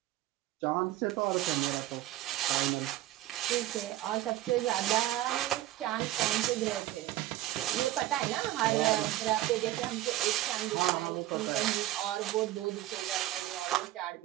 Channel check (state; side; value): quieter; left; 15.0 dB